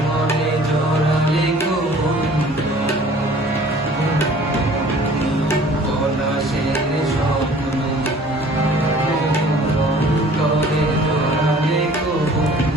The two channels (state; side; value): normal; both; correlation 0.51